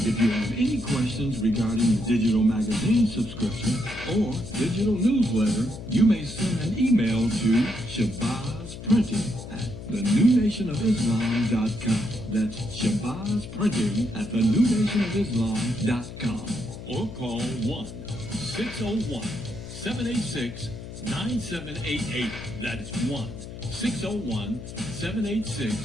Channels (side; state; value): left; noise; hum, 11 dB below the sound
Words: you have any questions regarding the digital magazine subscription or digital newsletter, you may send an email to shabazprinting@thenewnationofislam.com. That's shabazprinting@thenewnationofislam.com. Or call 1-601-786-9788. That's